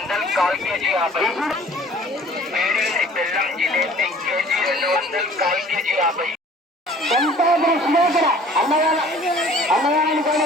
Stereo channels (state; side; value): normal; both; correlation 0.50